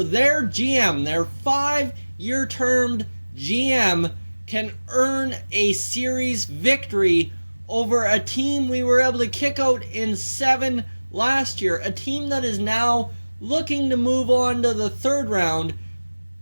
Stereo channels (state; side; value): inverted; both; correlation -1.00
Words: their GM, their 5-year termed GM, can earn a series victory over a team we were able to kick out in 7 last year. A team that is now looking to move on to the 3rd round